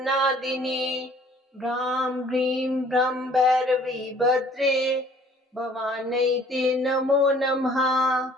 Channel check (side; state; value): both; normal; correlation 0.56